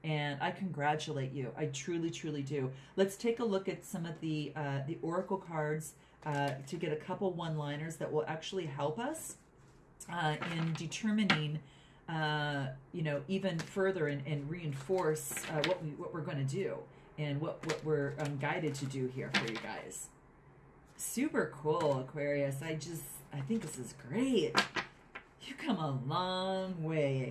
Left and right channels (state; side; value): identical; both; correlation 1.00